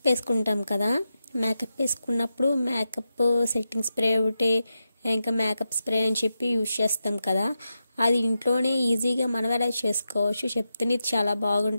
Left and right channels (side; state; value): both; inverted; correlation -0.89